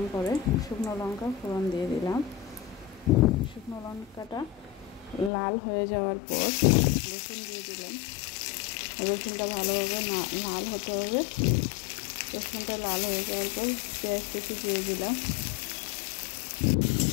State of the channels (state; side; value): drops out; right; at 5.3 s